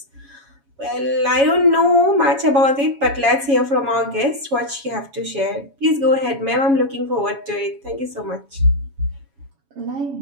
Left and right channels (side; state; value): left; late; 7.2 ms